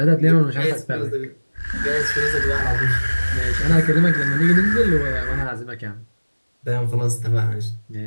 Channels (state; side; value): inverted; both; correlation -1.00